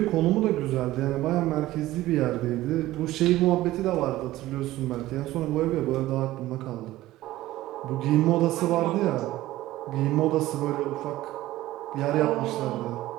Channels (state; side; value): quieter; left; 16.2 dB